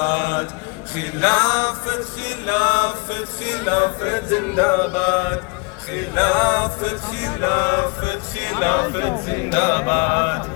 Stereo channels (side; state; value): right; quieter; 31.4 dB